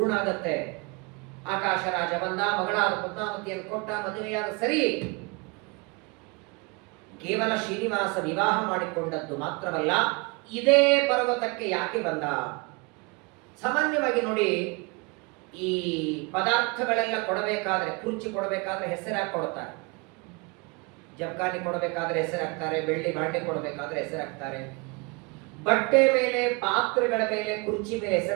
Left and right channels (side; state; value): left; quieter; 29.4 dB